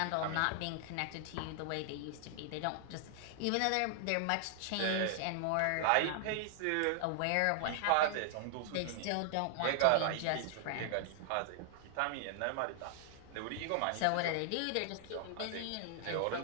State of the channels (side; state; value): both; different; correlation -0.01